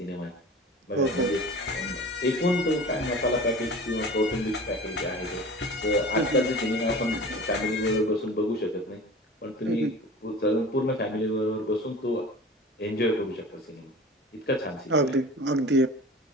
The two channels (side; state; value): both; normal; correlation 0.38